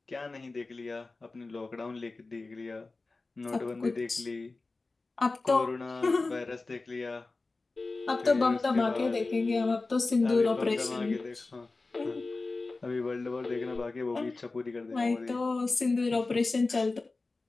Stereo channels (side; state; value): right; quieter; 3.5 dB